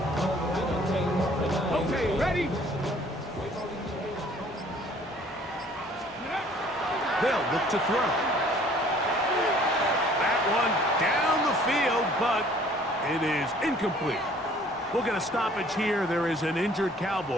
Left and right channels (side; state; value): both; normal; correlation 0.55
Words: Okay, ready? They'll look to throw. That one down the field, but it is incomplete. We'll get a stoppage here. There is an injured